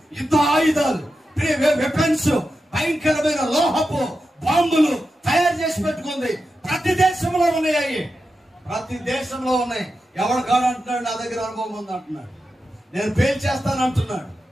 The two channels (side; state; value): both; normal; correlation 0.90